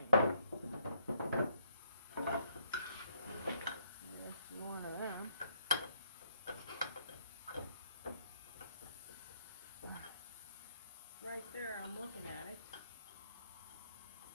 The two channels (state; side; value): inverted; both; correlation -0.69